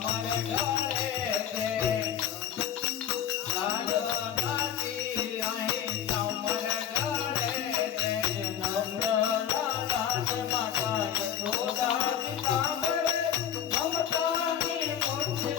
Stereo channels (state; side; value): quieter; right; 9.5 dB